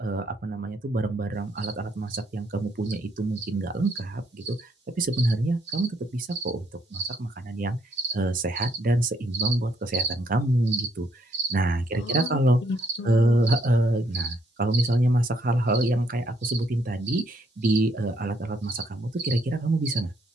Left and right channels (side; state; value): both; normal; correlation 0.70